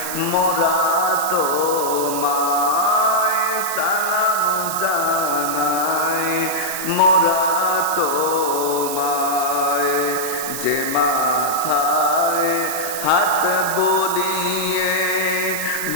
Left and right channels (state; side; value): noise; right; hiss, 6 dB below the sound